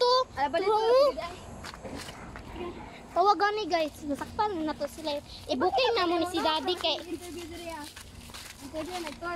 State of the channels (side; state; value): both; identical; correlation 1.00